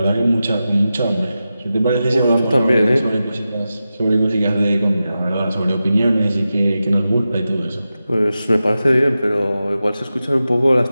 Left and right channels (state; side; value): inverted; both; correlation -0.92